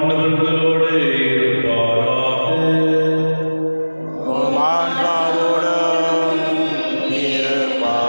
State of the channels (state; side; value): inverted; both; correlation -1.00